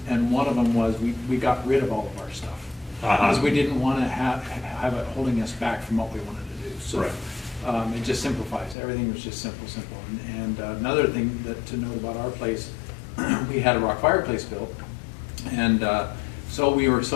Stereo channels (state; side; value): drops out; right; at 8.8 s